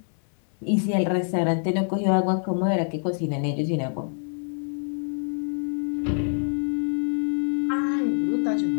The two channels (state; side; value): silent; right; digital silence